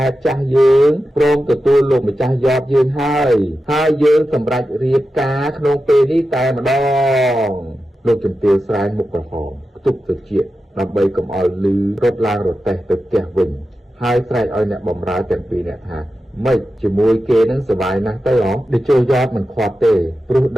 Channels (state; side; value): normal; both; correlation 0.91